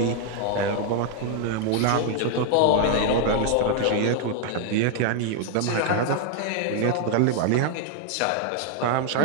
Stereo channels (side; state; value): both; different; correlation 0.00